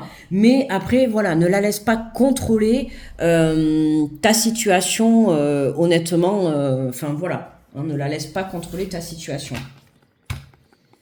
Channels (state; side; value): identical; both; correlation 1.00